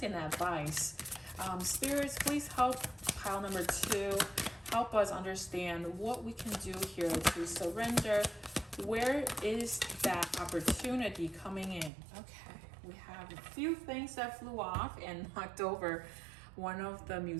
and advice. Spirits, please help pile number 2. Help us understand what we can do here to surrender. Where is that opportunity coming in? Okay, we have a few things that flew off and knocked over one of the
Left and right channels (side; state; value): left; drops out; at 11.9 s